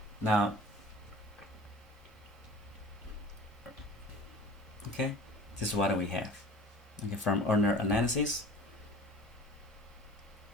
Now, okay, this is what we have. Okay, from ordinary analysis,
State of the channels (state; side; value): normal; both; correlation 0.43